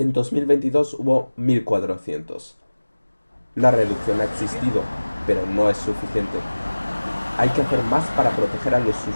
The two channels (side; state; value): both; inverted; correlation -1.00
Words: 2022 hubo 1.400. La reducción ha existido, pero no es suficiente. Hay que hacer más para proteger a los